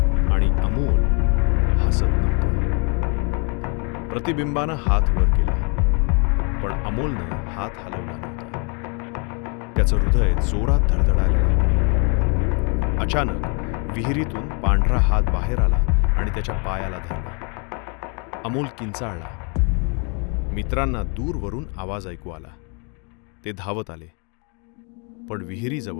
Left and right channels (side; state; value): right; quieter; 36.1 dB